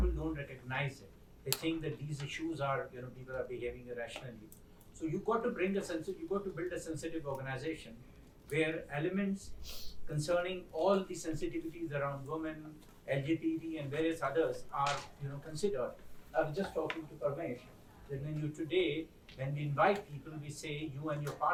don't recognize it. They think that these issues are, people are behaving irrationally. So you got to build a sensitive organization where elements concerning all the sensitivities around women, LGBT, and various others are, considered. I was just talking to Parmesh that when we invite people, we say you and your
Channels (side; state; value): both; identical; correlation 1.00